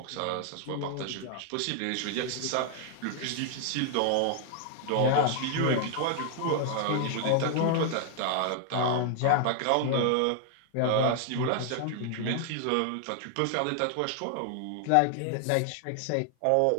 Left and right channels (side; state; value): both; different; correlation 0.00